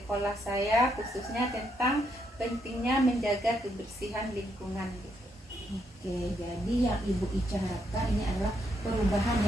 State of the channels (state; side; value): normal; both; correlation 0.77